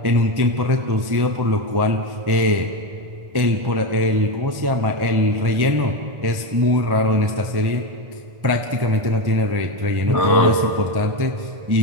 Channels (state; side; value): late; left; 1.1 ms